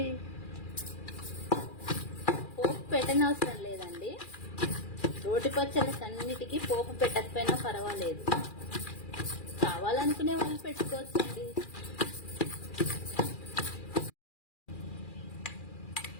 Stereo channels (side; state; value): right; late; 2.4 ms